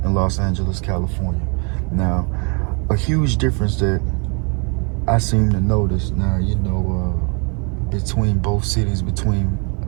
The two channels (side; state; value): left; quieter; 35.1 dB